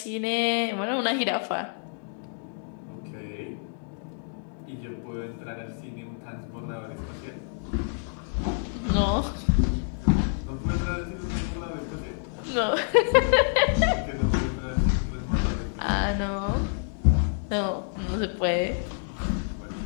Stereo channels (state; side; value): silent; right; digital silence